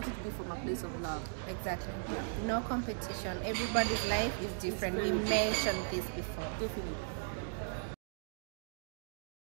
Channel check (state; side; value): silent; left; digital silence